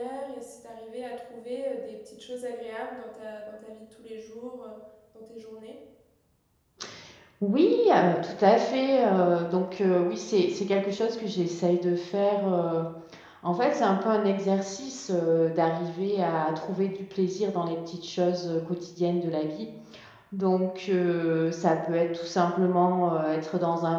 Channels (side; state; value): both; identical; correlation 1.00